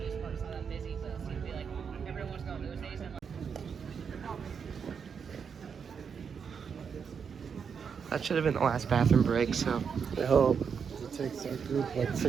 That should have been the last bathroom break, so. I hope. It takes our group like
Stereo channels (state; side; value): quieter; left; 6.6 dB